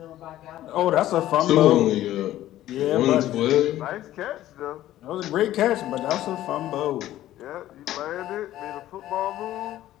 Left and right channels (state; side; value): quieter; right; 13.8 dB